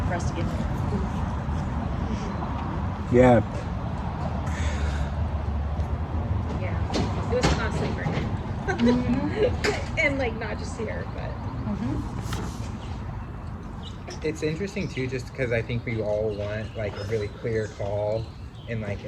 for us to get there. Yeah. Yeah, it was costly for him. And like not just here, but It's interesting too, just because I think we all want like a really clear call and like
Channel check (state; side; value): identical; both; correlation 1.00